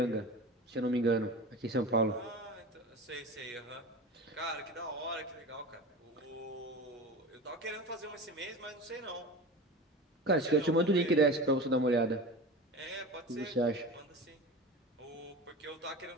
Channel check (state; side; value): normal; both; correlation 0.31